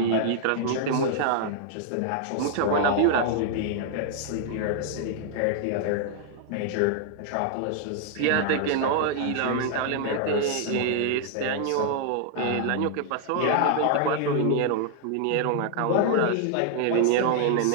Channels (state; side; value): different; both; correlation -0.01